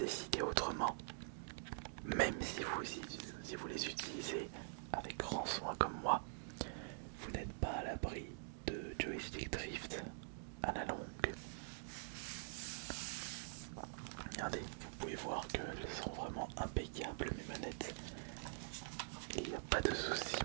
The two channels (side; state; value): left; silent; digital silence